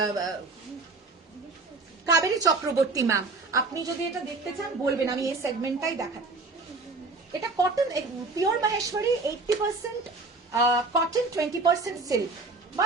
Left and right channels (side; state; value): left; quieter; 3.7 dB